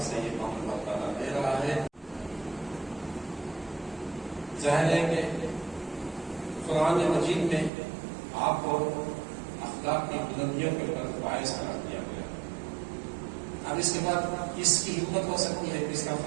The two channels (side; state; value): left; drops out; at 7.7 s